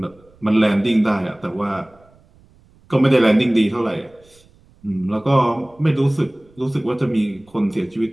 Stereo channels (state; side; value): noise; right; rumble, 30 dB below the sound